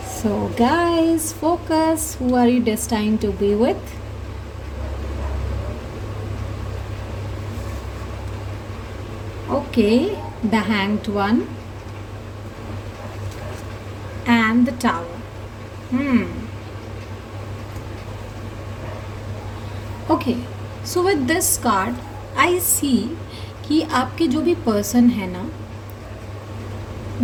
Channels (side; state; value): both; identical; correlation 1.00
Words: So guys, focus. Who are you destined to be with? Okay, the Hanged One and the Tower. Okay, so with this card I see कि आपके जो भी पर्सन है ना,